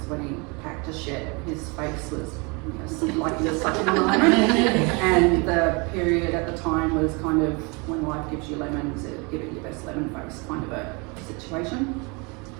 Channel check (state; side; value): quieter; left; 30.0 dB